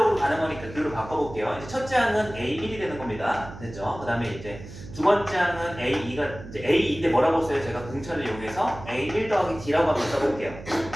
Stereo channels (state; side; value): noise; right; hum, 14 dB below the sound